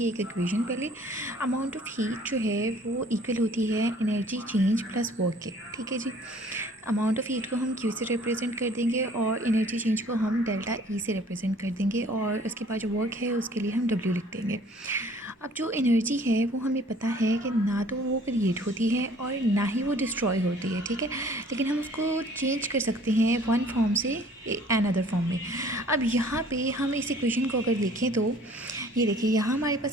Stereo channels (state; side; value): normal; both; correlation 0.54